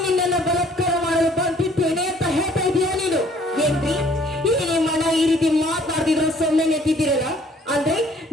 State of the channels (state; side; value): normal; both; correlation 0.59